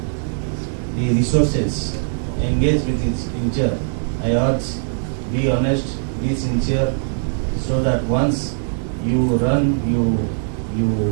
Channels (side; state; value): left; silent; digital silence